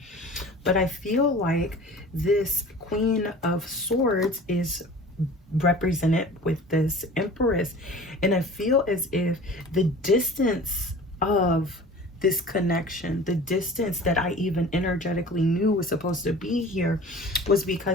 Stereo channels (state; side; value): normal; both; correlation 0.42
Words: But I feel like this Queen of Swords is represented with this Empress. And I feel as if the distance of this connection, the distance that I even energetically knew was supposed to be here, was